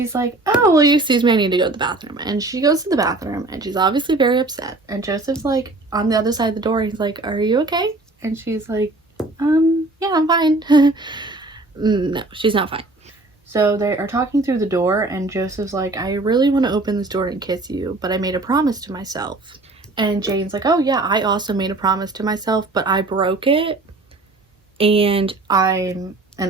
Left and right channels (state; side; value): quieter; left; 3.0 dB